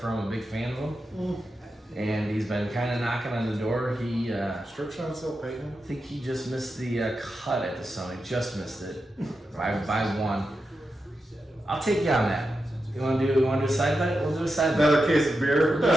I'm a big fan of him, and he's been kind of knocking on the door. He, Strip shot still paying. I think he just missed the cut at the Sony. Just missed it by one. I'll take you on that. You want to do a side bet? We'll do a side bet. Another case of beer.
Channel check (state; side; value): normal; both; correlation 0.89